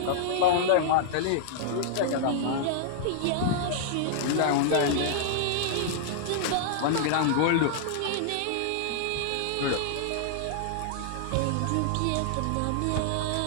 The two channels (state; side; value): different; both; correlation -0.01